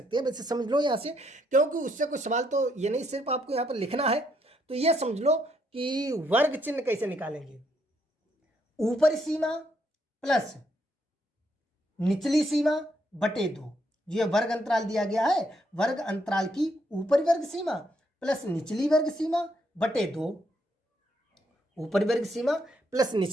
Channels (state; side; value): normal; both; correlation 0.74